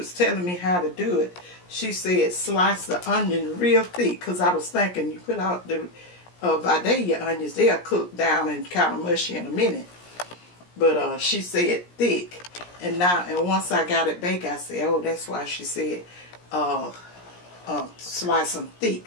telling me how to do it, she said slice the onion real thick. Because I was thinking you put out the Vidalia onions, they'll cook down and kind of mushy in a minute. But she said thick. And once I got it baked, I said, oh, that's why she said slice them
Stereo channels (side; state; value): right; late; 17 ms